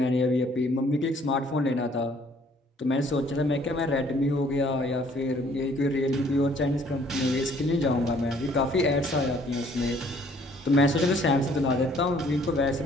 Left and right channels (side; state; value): both; normal; correlation 0.60